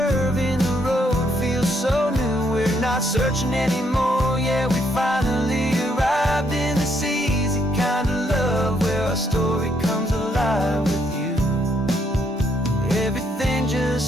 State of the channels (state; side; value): normal; both; correlation 0.73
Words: in the road feels so new. We're not searching anymore, yeah, we finally arrived in this easy kind of love, where our story comes alive with you. Everything